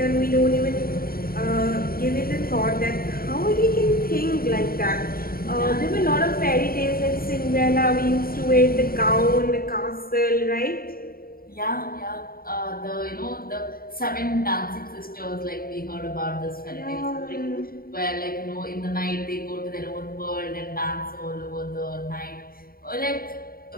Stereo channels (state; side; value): late; right; 0.43 ms